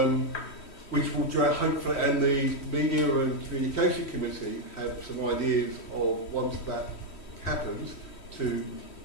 Which will hopefully, and the Media and Communication Committee have some ideas of, once that happens, to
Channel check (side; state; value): right; late; 3.1 ms